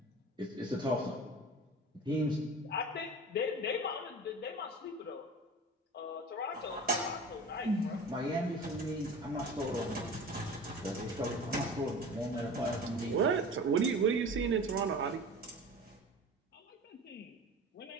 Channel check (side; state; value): both; normal; correlation 0.36